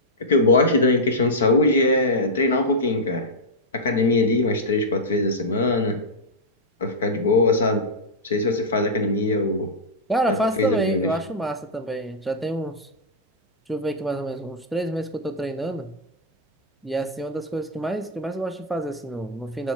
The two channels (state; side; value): normal; both; correlation -0.09